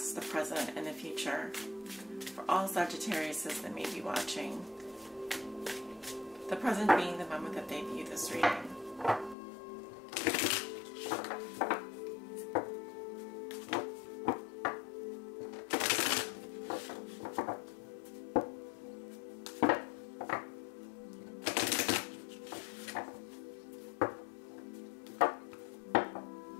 the present, and the future for all Sagittariuses that may be watching, the present being the moment that they view this reading.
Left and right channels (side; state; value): right; drops out; at 9.3 s